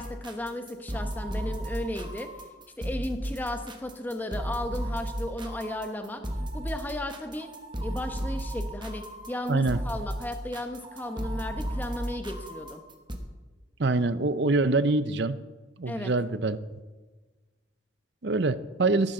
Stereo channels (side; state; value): both; normal; correlation 0.55